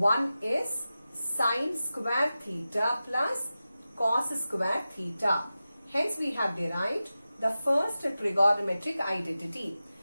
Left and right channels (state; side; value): inverted; both; correlation -0.94